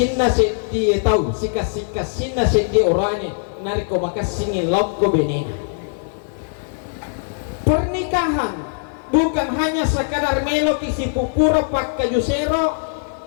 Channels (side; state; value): right; silent; digital silence